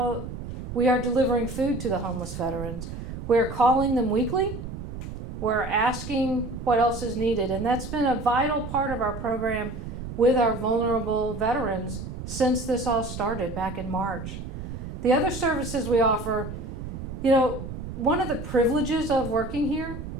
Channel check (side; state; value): right; noise; rumble, 8 dB below the sound